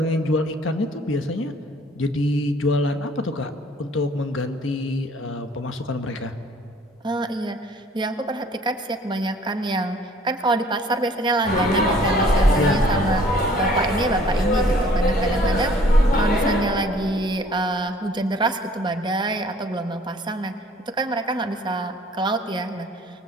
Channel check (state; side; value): normal; both; correlation 0.56